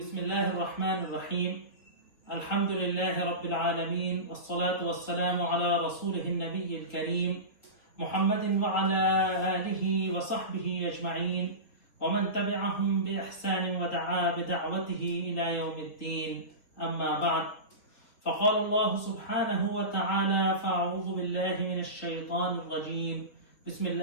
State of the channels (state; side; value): late; right; 3.5 ms